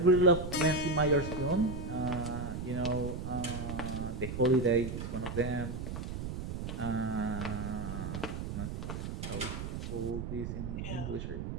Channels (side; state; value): right; noise; rumble, 5 dB below the sound